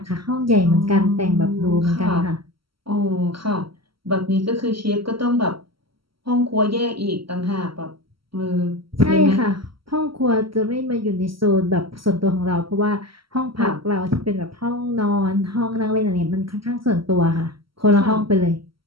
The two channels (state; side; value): late; left; 0.74 ms